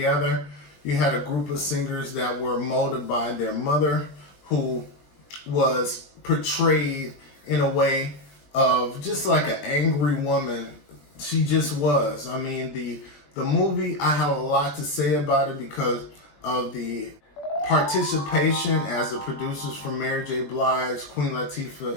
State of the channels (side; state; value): right; late; 21 ms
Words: You had a group of singers that were molded by their mother, who was portrayed in a way of just like an angry woman. She just was. I mean, the movie, I have a lot to say about it because of the participation as the producers from Mary J. Blige, Queen